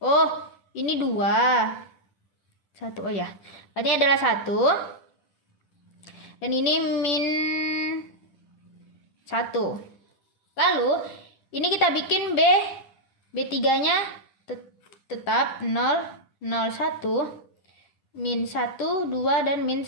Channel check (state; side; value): late; right; 10 ms